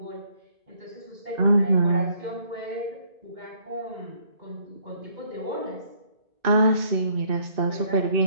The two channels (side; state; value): left; late; 2.6 ms